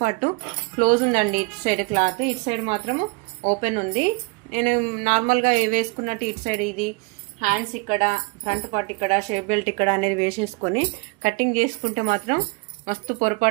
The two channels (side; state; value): left; quieter; 28.2 dB